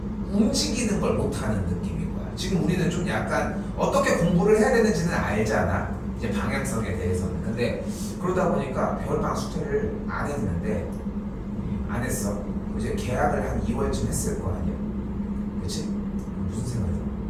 움직이는 걸 못하는 느낌인 거야. 지금 우리는 좀 약간 어떻게 공부를 해야 되는지는 알잖아. 이제 방향성에 대해서는. 근데 그러다 보니까 겨울방학 숙제를 안 했는데 안 했어. 이제 계약을 한 2월쯤 했을 거 아니야. 그치? 무슨 생각이 들어?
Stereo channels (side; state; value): both; identical; correlation 1.00